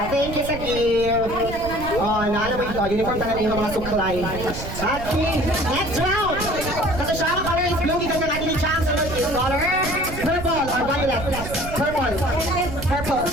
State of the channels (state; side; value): noise; right; rumble, 9 dB below the sound